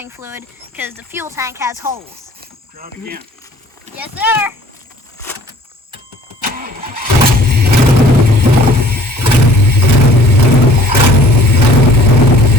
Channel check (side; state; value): both; normal; correlation 0.52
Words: fluid because the fuel tank has holes. Try it again. Yes, sir.